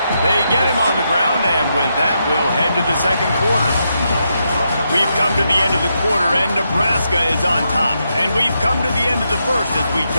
They get him on the ground, and with that, we'll head to the second quarter. We've come to the end of the quarter, and Nebraska is on top. And we've come to the end of the first as we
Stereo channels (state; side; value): inverted; both; correlation -0.82